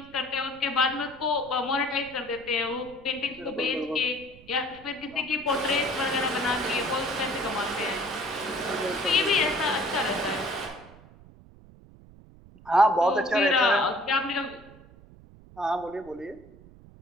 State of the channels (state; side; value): noise; right; rumble, 22 dB below the sound